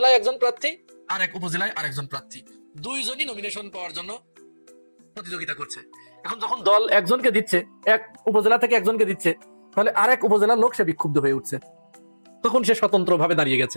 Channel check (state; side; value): inverted; both; correlation -1.00